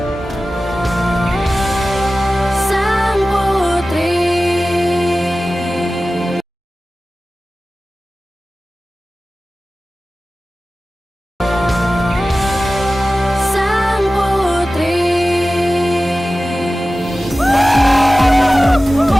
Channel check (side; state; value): both; normal; correlation 0.96